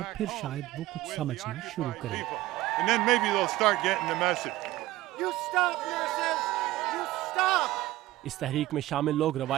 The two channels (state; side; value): quieter; left; 16.8 dB